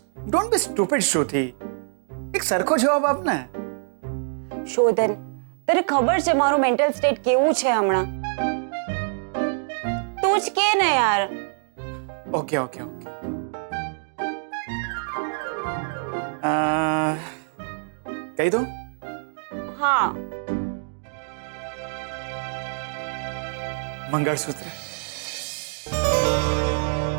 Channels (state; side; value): silent; left; digital silence